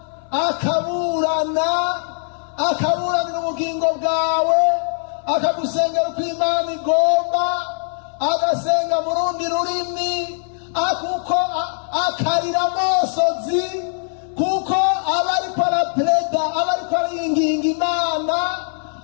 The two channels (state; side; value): silent; right; 65 dB below the other